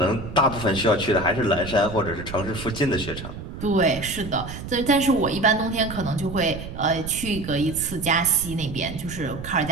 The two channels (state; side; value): noise; right; rumble, 10 dB below the sound